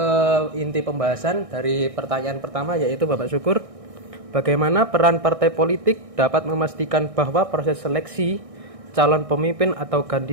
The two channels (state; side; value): late; left; 1.6 ms